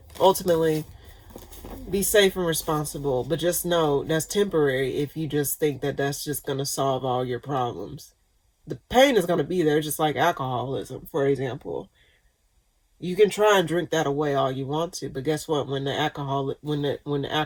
ultimately, be safe and responsible. But just know that's temporary if you just think that that's just going to solve all your problems. The pain is going to be there, just like alcoholism, for example. You can try and drink that away all you want to, but guess what? When the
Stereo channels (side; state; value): both; identical; correlation 1.00